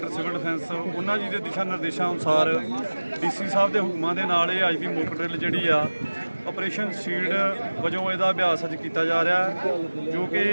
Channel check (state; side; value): inverted; both; correlation -1.00